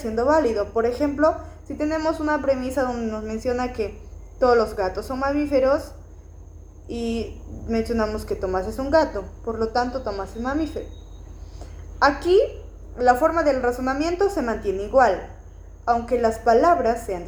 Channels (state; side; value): identical; both; correlation 1.00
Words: válido. Por ejemplo, si tenemos una premisa donde nos menciona que todos los gatos son mamíferos y mencionamos que Tomás es un gato, por lo tanto Tomás es mamífero. Aquí la forma del razonamiento se mantiene igual, aunque las palabras sean